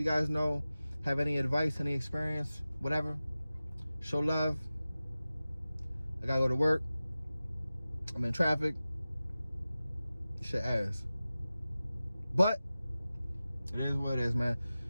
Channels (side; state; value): both; inverted; correlation -0.96